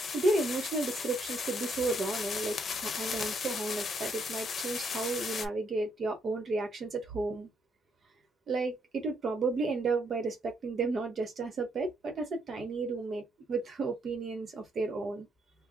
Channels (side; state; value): both; normal; correlation 0.73